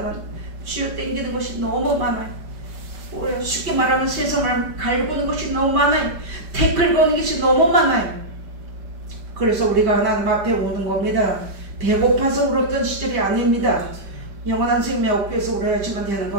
쥐어 땡기는 것이 너무 많아요. 쉽게 말하면 세상을 갈구는 것이 너무 많아요. 태클 거는 것이 너무 많아요. 그래서 우리가 하나님 앞에 오는 겁니다. 배고파서 울었던 시절이 아닙니다. 영원한 생명 얻기 위해서 울어야지만 되는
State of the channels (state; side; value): late; left; 5.1 ms